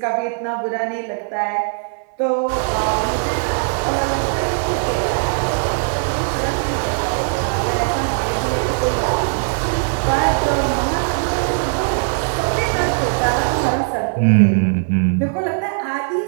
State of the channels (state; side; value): silent; left; 61 dB below the other